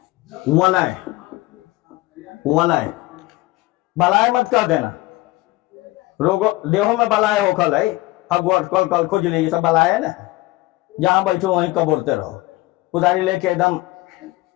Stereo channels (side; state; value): right; quieter; 19.2 dB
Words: वलय, वलय, बलाय मत कर देना, रोगो देहो में बलाय हो कल है, हगवट कल कल खुजली, सब बलाय है ना, जहां बैठो वहीं कबोरते रहो, कुदारी लेके एकदम।